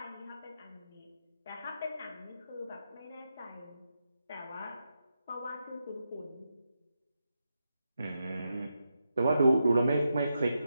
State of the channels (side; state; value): both; inverted; correlation -0.85